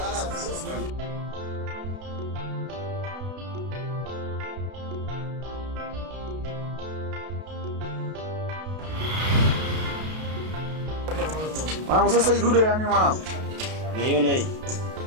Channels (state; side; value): late; left; 32 ms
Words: Mwanangu sasa hii dude yani mwanangu. Unaiona hii?